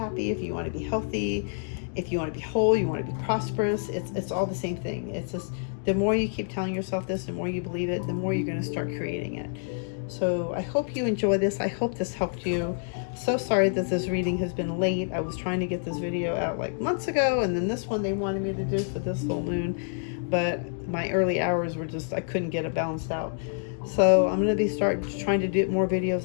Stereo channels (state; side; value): silent; right; digital silence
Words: if you want to be healthy, if you want to be whole, you want to be prosperous, it's all the same thing. It's just, the more you keep telling yourself this, the more you believe it, the more you're going to start creating it. So I hope you enjoy this. I hope this helped you. So sorry that this reading has been late. I was trying to get this video out like months ago, and then this one they wanted me to do for this full moon. but my early hours were just, I couldn't get it balanced out. So I'm going to start trying to do more